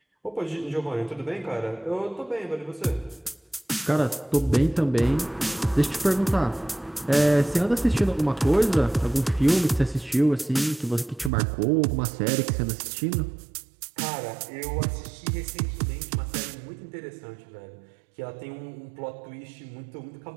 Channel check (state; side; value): drops out; left; at 11.3 s